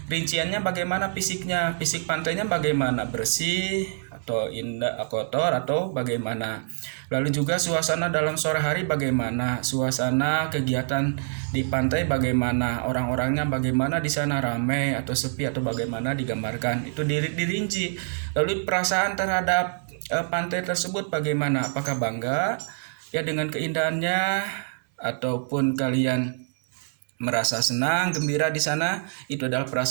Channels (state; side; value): silent; left; 61 dB below the other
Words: Rinciannya bagaimana fisiknya? Fisik pantainya bagaimana? Bersih atau indah, kotor atau bagaimana? Lalu juga suasana dalam sore hari bagaimana? Suasana kegiatan di pantai bagaimana? Orang-orangnya bagaimana, di sana ramai atau sepi atau bagaimana digambarkan? Itu dirinci. Lalu perasaan terhadap pantai tersebut bagaimana? Apakah bangga ya dengan keindahannya, ataupun kalian merasa senang, gembira di sana? Itu adalah